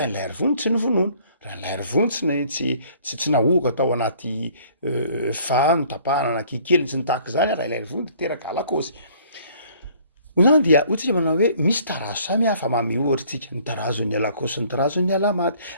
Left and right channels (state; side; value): inverted; both; correlation -0.57